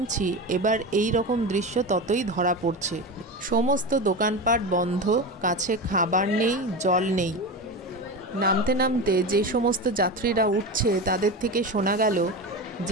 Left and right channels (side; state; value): both; normal; correlation 0.23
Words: এবার এই রকম দৃশ্য ততই ধরা পড়ছে। সমস্ত দোকানপাট বন্ধ, কাছে খাবার নেই, জল নেই। নামতে নামতে যে সমস্ত যাত্রীরা উঠছে তাদের থেকে শোনা গেল